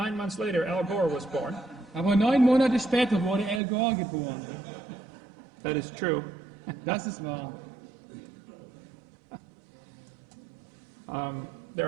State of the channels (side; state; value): left; drops out; at 3.6 s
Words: months later, Al Gore was born. Aber 9 Monate später wurde Al Gore geboren. That is true. Das ist wahr. There